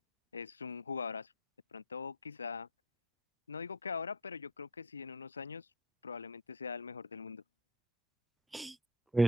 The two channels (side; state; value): both; normal; correlation 0.36